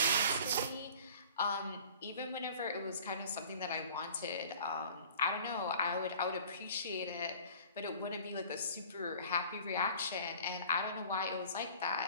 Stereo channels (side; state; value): both; inverted; correlation -0.47